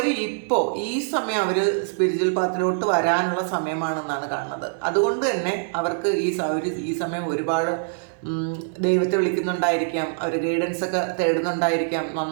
ഇപ്പോൾ ഈ സമയം അവർ സ്പിരിച്വൽ പാത്തിലോട്ട് വരാനുള്ള സമയമാണെന്നാണ് കാണുന്നത്. അതുകൊണ്ട് തന്നെ അവർക്ക് ഈ സമയം ഒരുപാട് ദൈവത്തെ വിളിക്കുന്നുണ്ടായിരിക്കാം, അവർ ഗൈഡൻസ് ഒക്കെ തേടുന്നുണ്ടായിരിക്കാം,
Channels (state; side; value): silent; left; digital silence